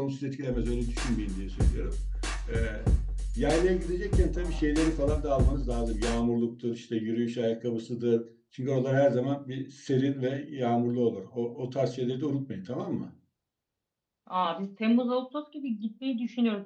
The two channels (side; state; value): both; identical; correlation 1.00